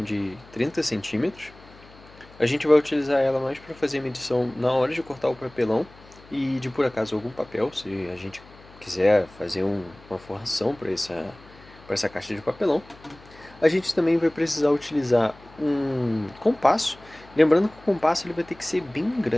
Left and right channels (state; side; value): noise; left; hum, 23 dB below the sound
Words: de 30 centímetros. A gente vai utilizar ela mais para fazer a medição na hora de cortar o papelão e de por acaso algum papel, se a gente quiser fazer uma forração para essa caixa de papelão. A gente também vai precisar utilizar um compasso, lembrando que o compasso ele vai ter que ser bem